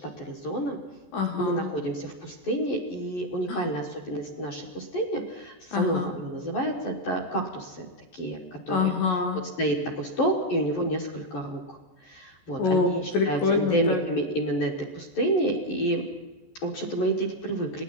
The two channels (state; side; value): late; right; 14 ms